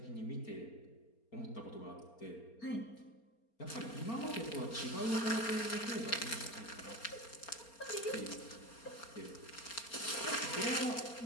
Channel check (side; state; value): right; late; 4.3 ms